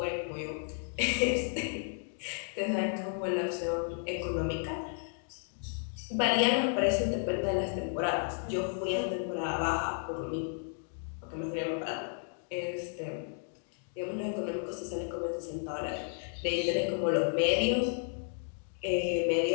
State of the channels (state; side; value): silent; right; 56 dB below the other